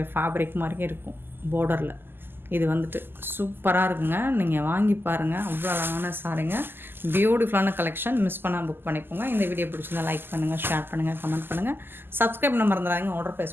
ஃபேப்ரிக் மாதிரியே இருக்கும் பார்டரில். இது வந்துட்டு சூப்பராக இருக்குங்க. நீங்கள் வாங்கி பாருங்கள், அவ்வளோ அழகான சாரிங்க. பியூட்டிஃபுல்லான கலெக்ஷன். மிஸ் பண்ணால் புக் பண்ணிக்கோங்க. இந்த வீடியோ பிடிச்சிருந்தா லைக் பண்ணுங்கள், ஷேர் பண்ணுங்கள், கமெண்ட் பண்ணுங்கள், சப்ஸ்கிரைப் பண்ண மறந்துடாதீங்க. ஆர்டர்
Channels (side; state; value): left; late; 0.099 ms